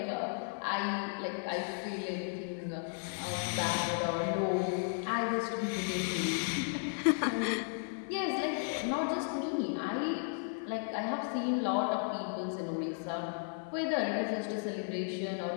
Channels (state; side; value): silent; right; digital silence